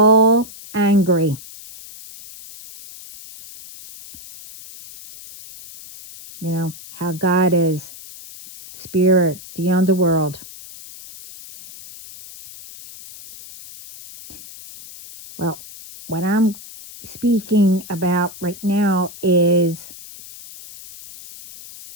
angry. How God is spirit, the underworld. Well, what I'm speaking about right now is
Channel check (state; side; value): noise; left; hiss, 17 dB below the sound